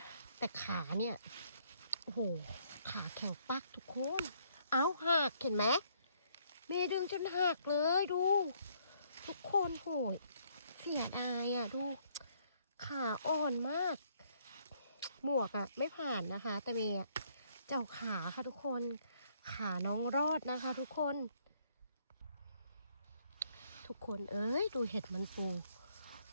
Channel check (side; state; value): both; inverted; correlation -0.68